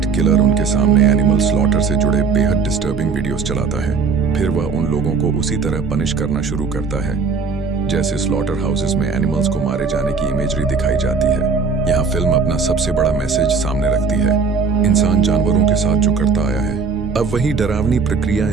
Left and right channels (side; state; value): left; quieter; 4.8 dB